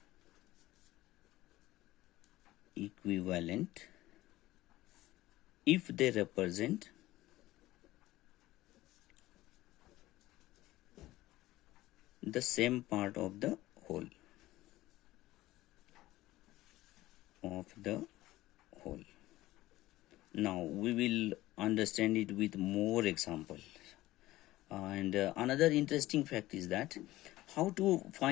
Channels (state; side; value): quieter; right; 16.9 dB